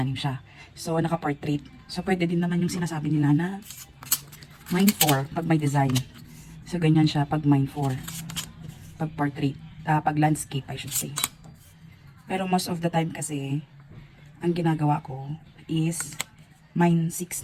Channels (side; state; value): both; identical; correlation 1.00